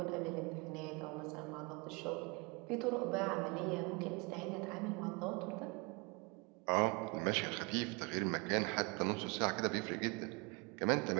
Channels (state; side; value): quieter; left; 29.6 dB